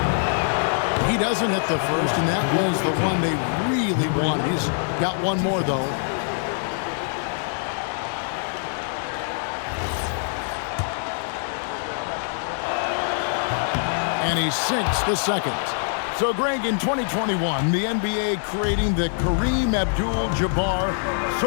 He doesn't hit the first, and that was the one they really wanted. He's got one more, though. And he sinks the second. So, Greg, in 2021, the NBA creating the Kareem Abdul-Jabbar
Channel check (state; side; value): silent; right; digital silence